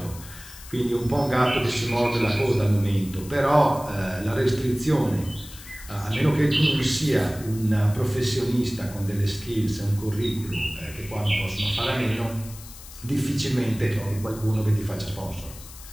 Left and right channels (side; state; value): left; noise; hiss, 17 dB below the sound